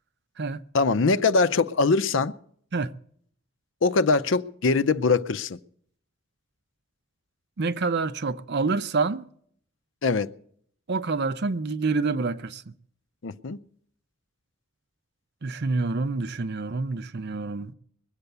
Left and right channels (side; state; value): both; normal; correlation 0.02